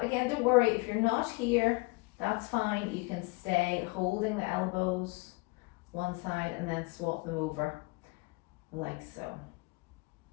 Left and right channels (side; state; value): right; quieter; 26.9 dB